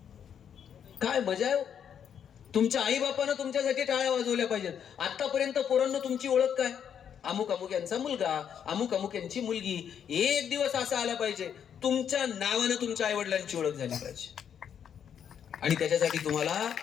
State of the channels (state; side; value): quieter; right; 8.4 dB